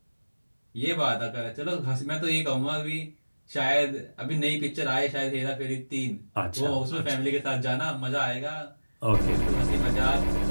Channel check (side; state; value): both; inverted; correlation -1.00